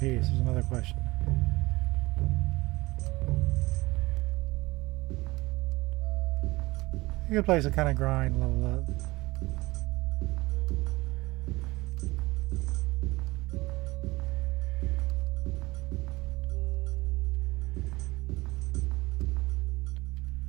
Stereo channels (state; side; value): quieter; left; 21.3 dB